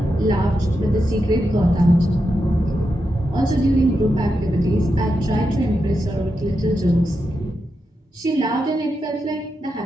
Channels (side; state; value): both; normal; correlation 0.87